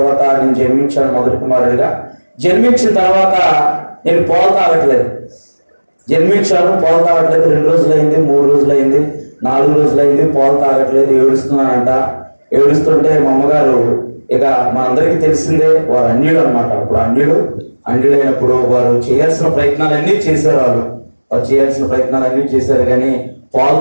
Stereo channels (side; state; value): both; inverted; correlation -1.00